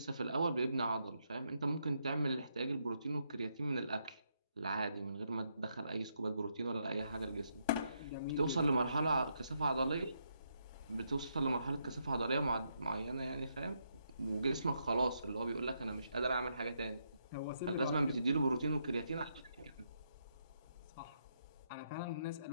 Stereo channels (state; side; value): inverted; both; correlation -0.78